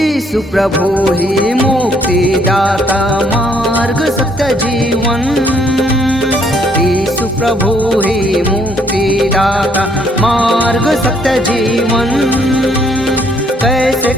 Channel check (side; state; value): both; normal; correlation 0.66